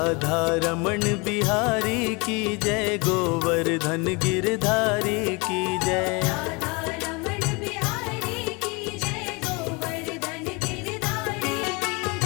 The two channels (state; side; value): quieter; right; 28.5 dB